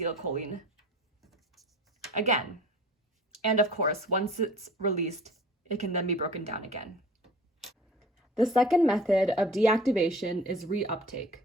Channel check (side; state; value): both; normal; correlation 0.45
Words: again. And of course, once it's released, it can then be broken down again. The second method of deactivation is reuptake.